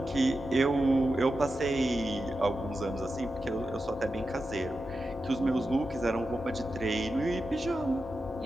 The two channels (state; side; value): normal; both; correlation 0.90